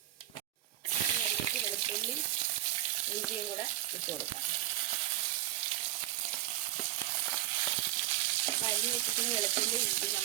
ഇനി അതിലേക്ക് വെളുത്തുള്ളി ഇഞ്ചിയും കൂടെ ഇട്ട് കൊടുക്കാം. അപ്പോൾ അരിഞ്ഞ് വെച്ചിട്ട് വെളുത്തുള്ളി ഇഞ്ചി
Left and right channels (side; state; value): left; quieter; 15.7 dB